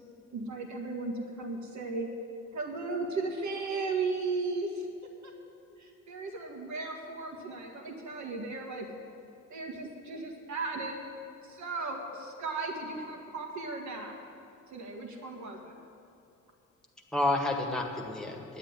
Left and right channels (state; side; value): normal; both; correlation 0.33